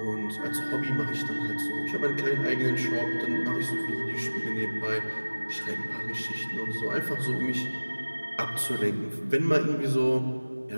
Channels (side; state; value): both; inverted; correlation -1.00